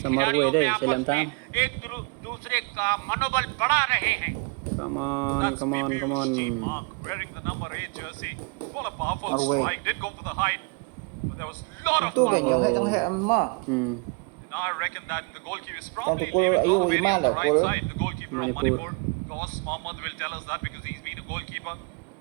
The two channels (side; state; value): left; quieter; 32.8 dB